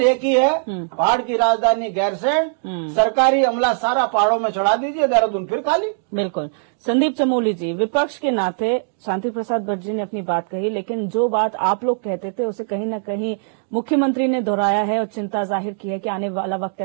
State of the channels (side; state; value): left; silent; digital silence